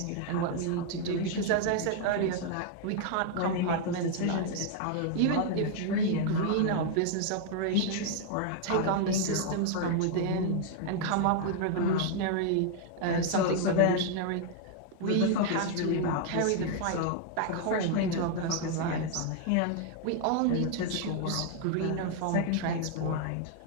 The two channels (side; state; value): both; different; correlation 0.00